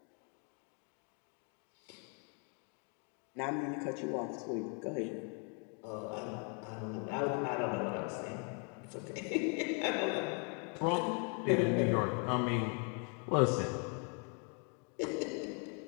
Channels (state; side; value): quieter; right; 37.9 dB